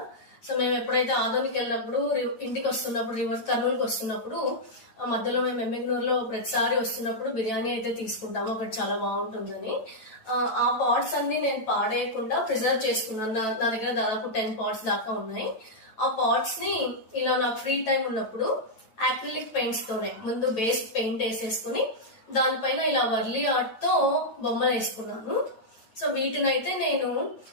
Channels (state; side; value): late; right; 9.0 ms